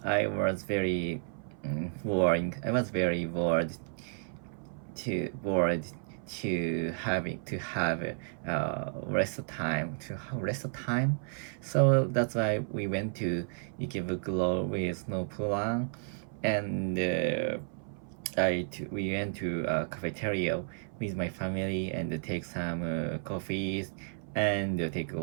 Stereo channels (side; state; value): left; silent; 56 dB below the other